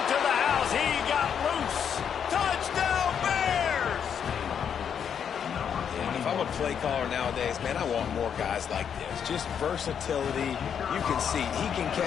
to the house. He got loose. Touchdown, Bears! And if I'm a play caller nowadays, man, I want more guys like this. Just versatility. You can see he can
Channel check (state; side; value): quieter; right; 7.9 dB